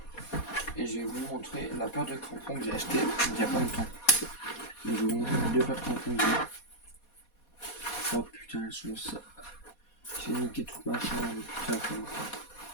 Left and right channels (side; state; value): right; late; 4.2 ms